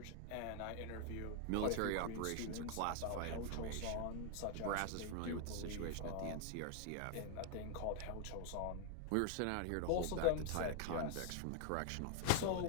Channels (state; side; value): different; both; correlation 0.00